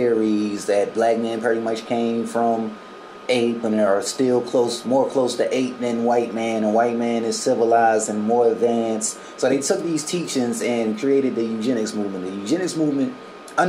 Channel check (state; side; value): identical; both; correlation 1.00